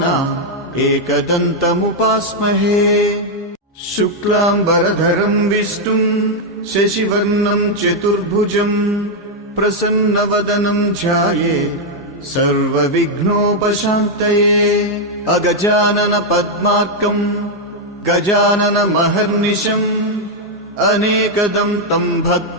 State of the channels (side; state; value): both; normal; correlation -0.01